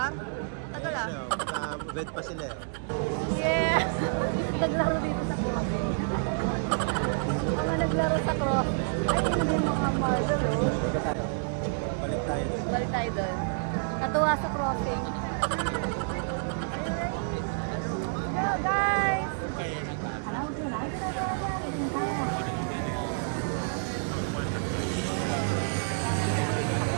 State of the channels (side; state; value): left; silent; digital silence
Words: Tagal ah. Bed pa sila eh. Yeah! naglaro dito sa crossing. Mga naglaro sa crossing. Ay, hindi yung mga marble, oh. Balik tayo doon. Natuwa sa crossing. Hello, guys!